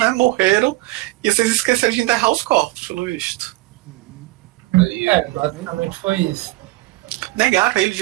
morreram, e vocês esqueceram de enterrar os corpos, pelo visto. Basicamente foi isso. Negaram ele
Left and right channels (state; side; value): quieter; left; 19.6 dB